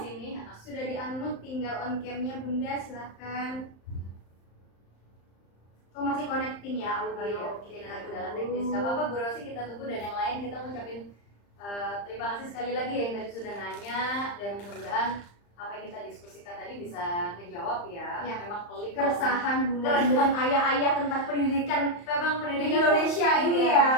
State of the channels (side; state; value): right; late; 35 ms